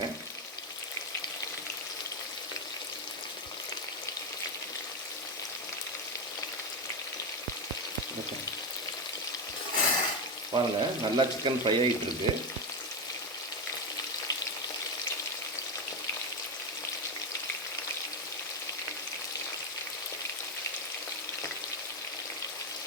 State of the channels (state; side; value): normal; both; correlation 0.11